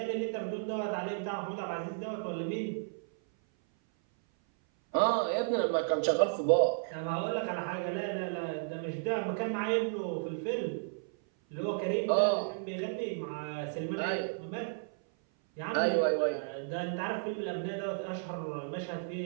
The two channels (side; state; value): left; silent; 56 dB below the other